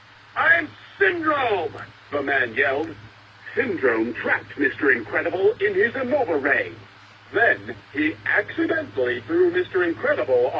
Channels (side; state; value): both; identical; correlation 1.00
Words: I'm Syndrome. The man yelled. Syndrome trapped Mr. Incredible in his Innova Ray. Then he accidentally threw Mr. Incredible